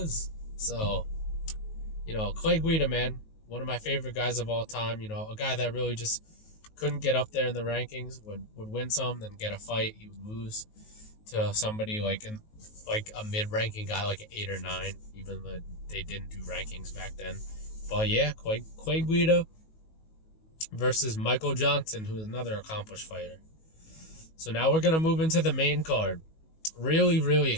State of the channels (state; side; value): late; right; 19 ms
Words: So, Clay Guida, man, one of my favorite guys of all time. A guy that really just couldn't get up there in the rankings, would win some, then get a fight, he would lose. to somebody like a mid-ranking guy, like an 8 or 9, even though they didn't do rankings back then. But yeah, Clay Guida versus Michael Johnson, who's another accomplished fighter. So now we're going to move into the main card. Really, really